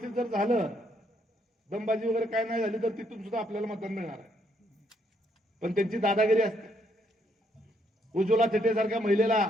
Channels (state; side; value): normal; both; correlation 0.72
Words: जर झालं, दमबाजी वगैरे काय नाही झाली, तर तिथून सुद्धा आपल्याला मतदान मिळणार आहे. पण त्यांची दादागिरी असते. उज्ज्वला थिटे सारख्या महिलेला